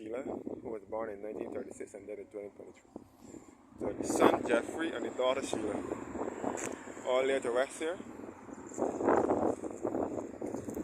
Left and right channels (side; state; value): both; identical; correlation 1.00